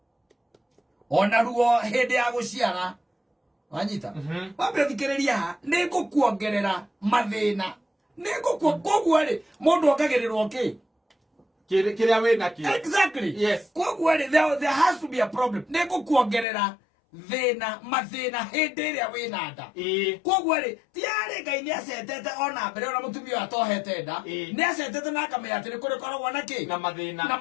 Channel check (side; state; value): right; drops out; at 16.4 s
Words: ona ruo hindi ya guciara wanyita wambe thikiriria nigukuongerera mathina koguo ri mundu ongagirirwo ki kiria wina ki exactly yes koguo ri there has to be a problem nigukuongerera mathina hindi iria wina nda koguo ri tiari Ngai ni acetete ona mbere ona mutumia atohete nda ni acetete na akamenya ati ni kuri koragwo na ki na